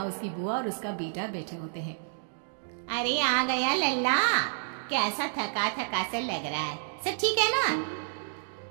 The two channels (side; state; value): left; silent; digital silence